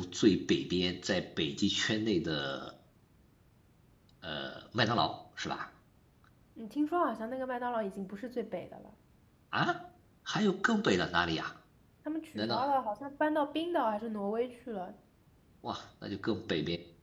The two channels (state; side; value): identical; both; correlation 1.00